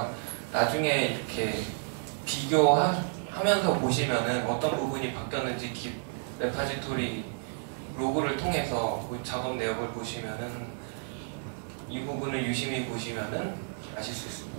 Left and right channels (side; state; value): left; silent; digital silence